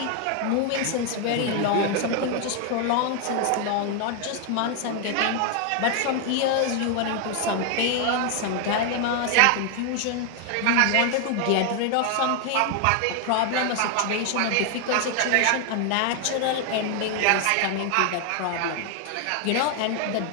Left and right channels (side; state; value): both; different; correlation 0.01